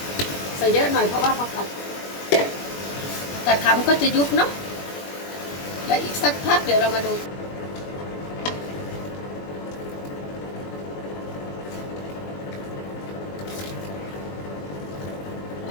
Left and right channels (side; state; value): right; late; 21 ms